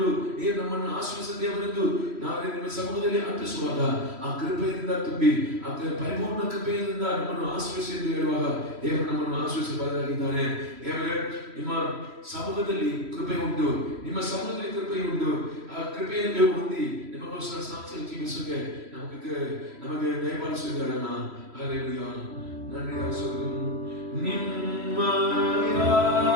ನೀವು ನಮ್ಮನ್ನು ಆಶ್ರಯಿಸಿದ ದೇವರೆಂದು ನಾವು ನಿಮ್ಮ ಸಮ್ಮುಖದಲ್ಲಿ ಅರ್ಪಿಸುವಾಗ ಆ ಕೃಪೆಯಿಂದ ತುಂಬಿ ಆ ಪರಿಪೂರ್ಣ ಕೃಪೆಯಿಂದ ನಮ್ಮನ್ನು ಆಶ್ರಯಿಸಿ ಎಂದು ಹೇಳುವಾಗ ದೇವರು ನಮ್ಮನ್ನು ಆಶ್ರಯಿಸಬಾರದಾಗಿದ್ದಾನೆ. ದೇವರೇ, ನಿಮ್ಮ ಸಮ್ಮುಖದಲ್ಲಿ ಕೃಪೆ ಉಂಟು, ನಿಮ್ಮ ಸಮ್ಮುಖದಲ್ಲಿ ಕೃಪೆ ಉಂಟು. ಆ ಕೃಪೆಯನ್ನು ಹೊಂದಿ ನಿಮಗೋಸ್ಕರ ಸಾಕ್ಷಿ ಜೀವಿಸೋಕೆ ನಮಗೆ ದಯಪಾಲಿಸಿದ್ದಾರಲ್ಲ. ಹಲ್ಲೆಲೂಯಾ. ನನ್ನಿಂದ ನಿಮ್ಮಯ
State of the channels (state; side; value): late; left; 3.1 ms